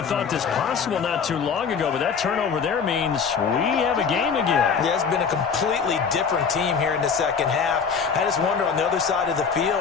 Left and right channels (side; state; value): right; quieter; 6.1 dB